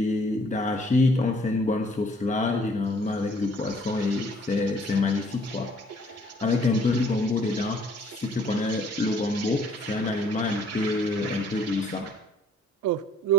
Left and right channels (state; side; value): normal; both; correlation 0.61